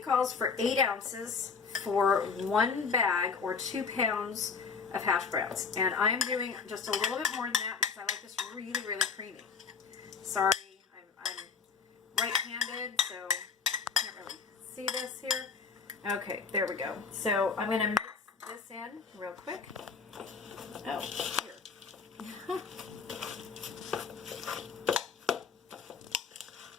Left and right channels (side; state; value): right; quieter; 5.4 dB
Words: for 8 ounces for 1 bag or 2 pounds of hash browns. And I am doing just a little bit more than that because I like this really, really creamy. Sorry, I'm right-handed, so you can't really see this here. Okay, there we go. So I'm going to mix this in real quick. Oh, here.